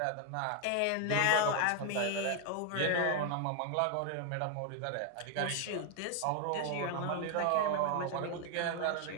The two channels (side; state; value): both; different; correlation 0.00